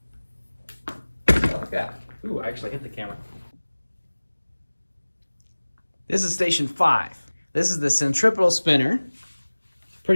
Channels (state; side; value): inverted; both; correlation -1.00